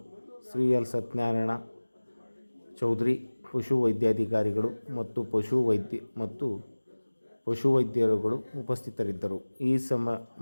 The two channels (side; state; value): both; inverted; correlation -1.00